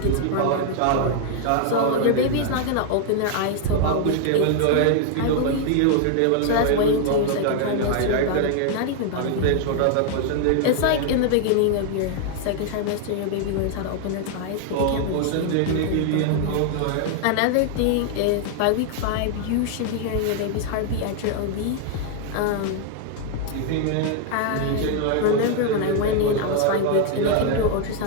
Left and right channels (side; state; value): both; different; correlation 0.00